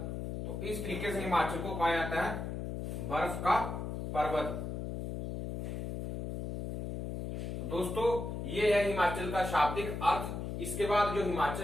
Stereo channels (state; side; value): noise; left; hum, 4 dB below the sound